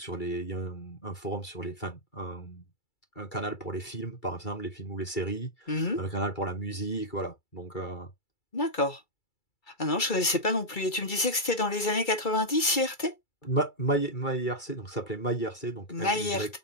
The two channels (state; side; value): late; right; 2.3 ms